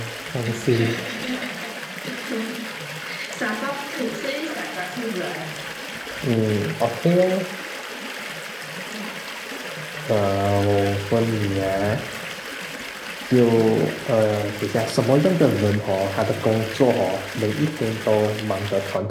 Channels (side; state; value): both; identical; correlation 1.00